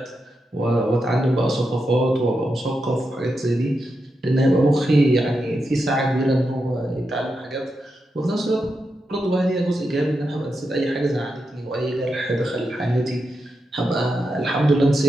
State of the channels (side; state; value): both; normal; correlation 0.86